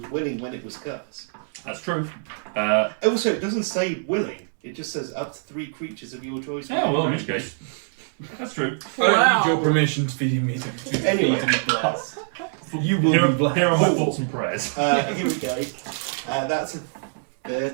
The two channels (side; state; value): left; silent; digital silence